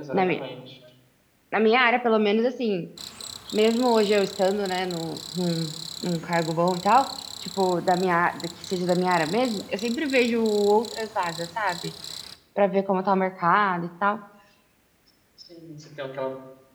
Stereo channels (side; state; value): both; identical; correlation 1.00